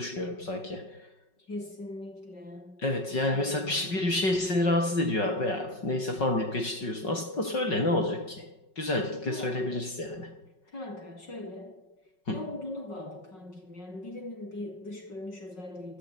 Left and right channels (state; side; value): late; right; 5.4 ms